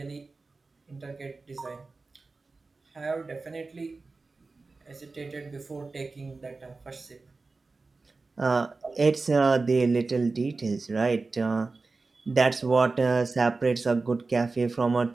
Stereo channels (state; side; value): quieter; left; 3.8 dB